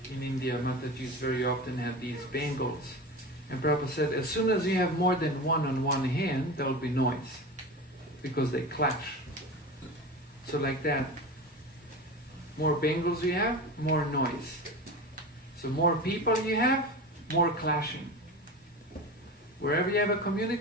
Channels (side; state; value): both; normal; correlation 0.28